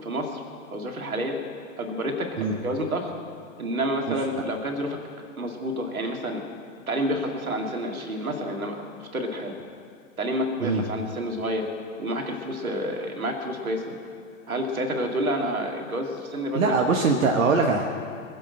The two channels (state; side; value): normal; both; correlation 0.22